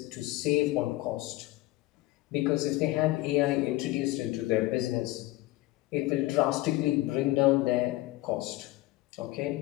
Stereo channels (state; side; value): quieter; right; 18.3 dB